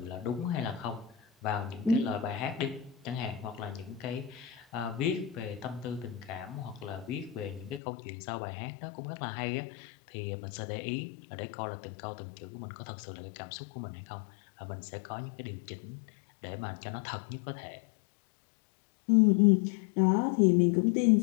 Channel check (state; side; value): drops out; right; at 7.8 s